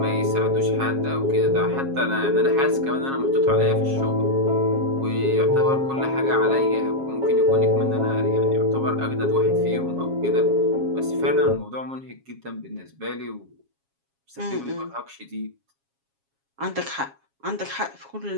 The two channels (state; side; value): late; left; 7.3 ms